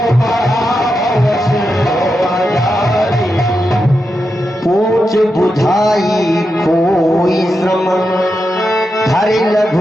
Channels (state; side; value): normal; both; correlation 0.87